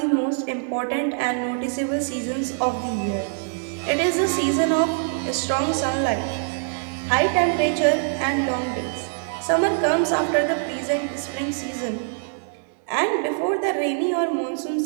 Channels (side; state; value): left; silent; digital silence